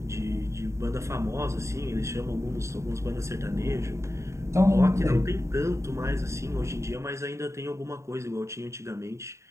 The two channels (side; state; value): left; late; 0.14 ms